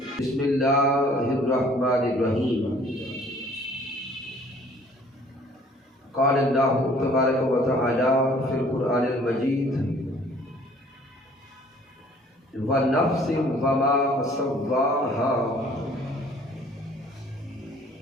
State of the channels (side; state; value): both; normal; correlation 0.55